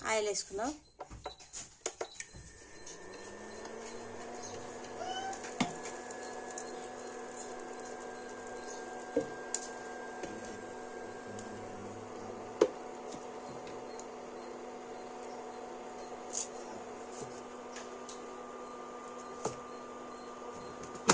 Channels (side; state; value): both; identical; correlation 1.00